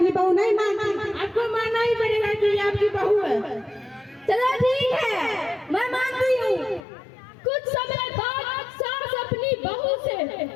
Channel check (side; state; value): right; drops out; at 6.8 s